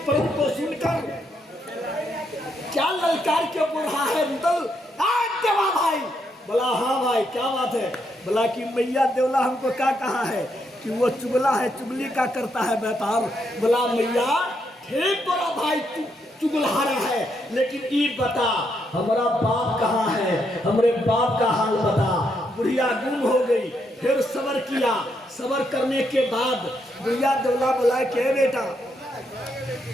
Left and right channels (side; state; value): both; normal; correlation 0.78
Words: पर्व को सुनकर क्या ललकार के बोल रहा है रुदल? देवा भाई। बोला हाँ भाई क्या बात है? बोला कि मैया देवला हमको क्या कहा है कि वो चुगला है, चुगली का करता है व्यापार। बोला मैया ठीक तोरा भाई चुगलहारा है, लेकिन ये बता हमारा बाप कहाँ है, हमारे बाप का हाल बता। बुढ़िया गुम हो गई, फिर सबर किया। सबर करने के बाद बुढ़िया देवला बोला के बेटा